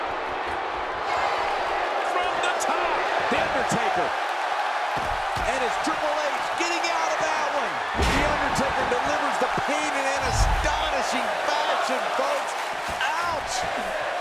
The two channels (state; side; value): identical; both; correlation 1.00